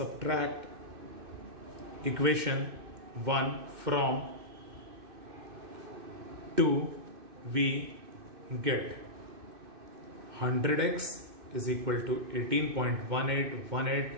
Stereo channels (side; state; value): left; late; 2.6 ms